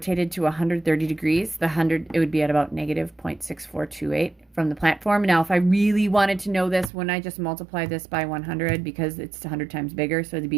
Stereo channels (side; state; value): left; drops out; at 6.9 s